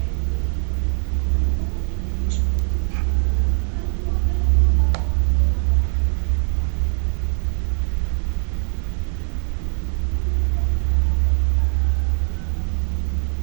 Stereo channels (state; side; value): silent; left; digital silence